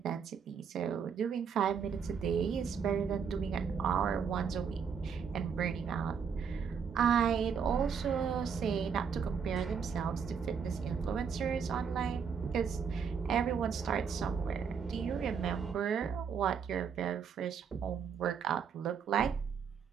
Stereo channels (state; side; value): quieter; left; 6.6 dB